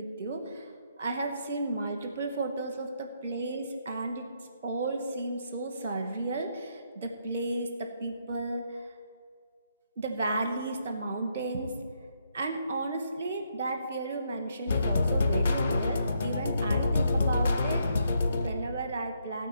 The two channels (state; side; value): inverted; both; correlation -0.75